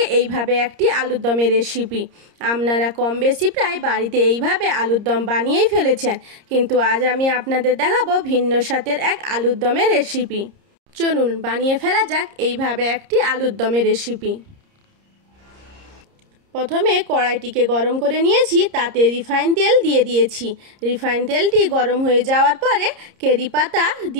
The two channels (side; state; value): left; late; 30 ms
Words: এইভাবে একটি আলুর দমের রেসিপি। আপনারা কম বেশি প্রায় বাড়িতে এইভাবে আলুর দম বানিয়েই ফেলেছেন, কিন্তু আজ আমি আপনাদের দেখাবো ভিন্ন স্বাদের এক আলুর দমের রেসিপি। চলুন বানিয়ে ফেলা যাক এইভাবে একটি আলুর দমের রেসিপি। প্রথমে কড়াইটিকে গরম করে নিয়েছি, তাতে রিফাইন তেল দিয়ে দিয়েছি। রিফাইন তেলটি গরম হয়ে যাওয়ার পরে কারি পাতা